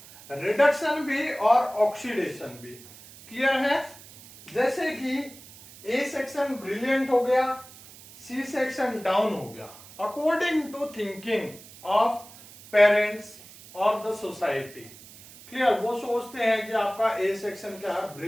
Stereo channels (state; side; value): noise; right; hiss, 19 dB below the sound